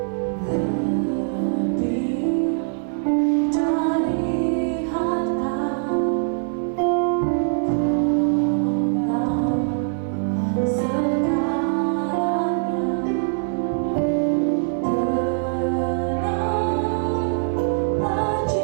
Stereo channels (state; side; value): silent; left; digital silence